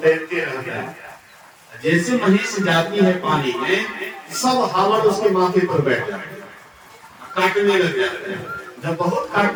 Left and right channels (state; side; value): identical; both; correlation 1.00